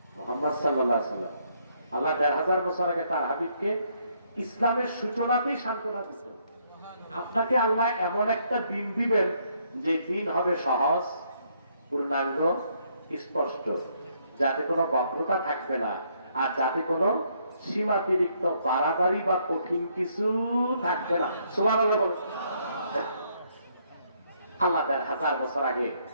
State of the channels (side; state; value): both; inverted; correlation -0.71